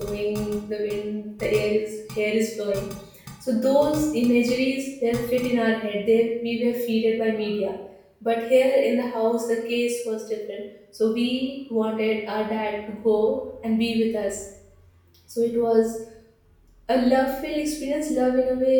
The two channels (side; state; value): both; identical; correlation 1.00